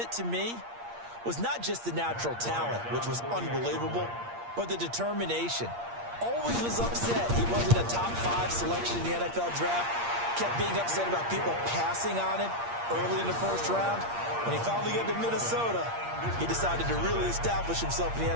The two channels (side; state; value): left; late; 8.6 ms